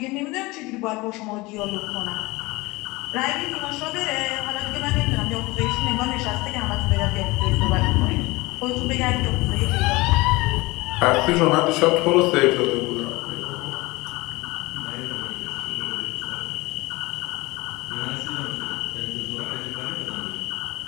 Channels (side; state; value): right; quieter; 22.4 dB